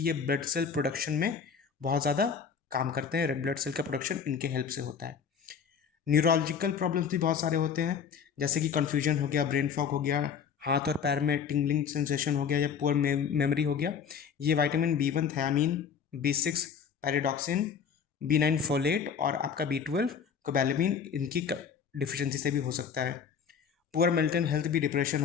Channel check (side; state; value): right; quieter; 6.9 dB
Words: ये ब्लड सेल प्रोडक्शन में बहुत ज़्यादा काम करते हैं। रेड ब्लड सेल का प्रोडक्शन इनके हेल्प से होता है। न्यूरोलॉजिकल प्रॉब्लम्स भी बहुत सारे होते हैं, जैसे कि कन्फ्यूजन हो गया, ब्रेन फॉग हो गया, हाथ और पैर में टिंगलिंग सेंसेशन हो गया या पुअर मेमोरी हो गया। ये vitamin B one thiamine, B six pyridoxine, B nine folate और आपका बी ट्वेल्व कोबैलेमिन, इनकी डिफिशियंसी से भी हो सकता है। पुअर मेंटल हेल्थ भी, डिप्रेशन